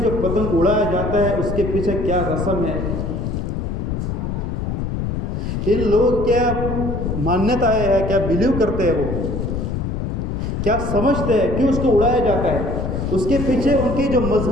پتنگ اڑایا جاتا ہے اس کے پیچھے کیا رسم ہے؟ ان لوگ کیا مانیتا ہے، کیا بلیو کرتے ہیں، وہ کیا سمجھتے ہیں، کیوں اس کو اڑایا جاتا ہے؟ اس کے پیچھے ان کی جو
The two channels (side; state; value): left; noise; rumble, 2 dB below the sound